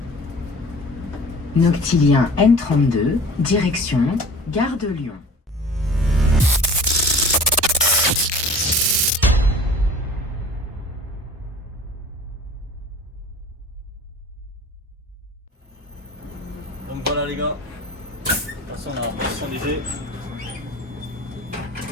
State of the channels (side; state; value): both; normal; correlation 0.43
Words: Noctilien N32, direction Gare de Lyon. Donc voilà les gars, attention on a Boissy-Saint-Léger.